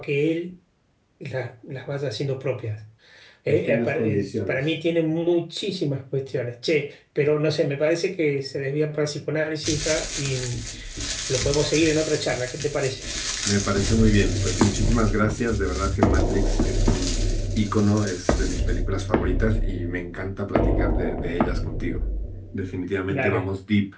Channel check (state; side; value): identical; both; correlation 1.00